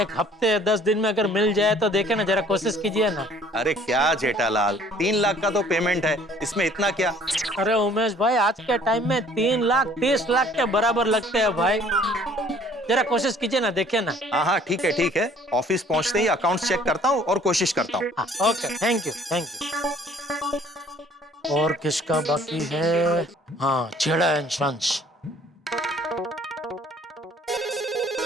एक हफ्ते 10 दिन में अगर मिल जाए तो देखे ना, जरा कोशिश कीजिए ना। अरे क्या जेठालाल, 3 लाख का तो पेमेंट है, इसमें इतना क्या? अरे उमेश भाई, आज के टाइम में 3 लाख 30 लाख के बराबर लगते हैं भाई। जरा कोशिश कीजिए ना, देखिए ना। हाँ ठीक है। ऑफिस पहुंचते ही अकाउंट चेक करता हूँ और कोशिश करता हूँ। Okay, thank you. और किसका बाकी है? हाँ, Chheda and sons.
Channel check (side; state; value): both; normal; correlation 0.56